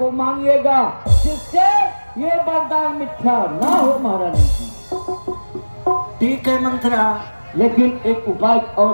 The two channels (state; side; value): inverted; both; correlation -1.00